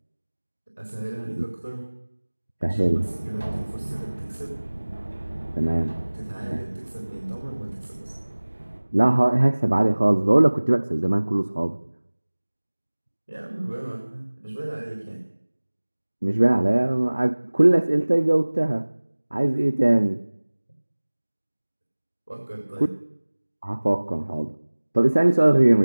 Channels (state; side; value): inverted; both; correlation -1.00